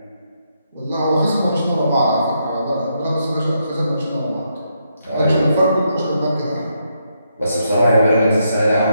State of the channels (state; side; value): inverted; both; correlation -0.79